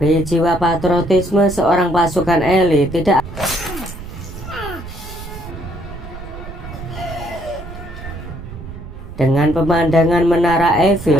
jiwa patriotisme seorang pasukan elit tidak. Dengan pemandangan menara Eiffel,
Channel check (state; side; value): noise; right; rumble, 13 dB below the sound